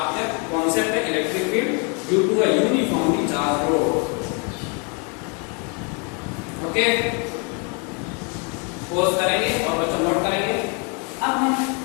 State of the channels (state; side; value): quieter; right; 34.8 dB